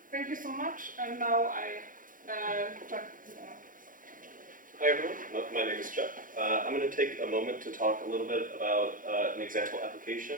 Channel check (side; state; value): left; late; 0.39 ms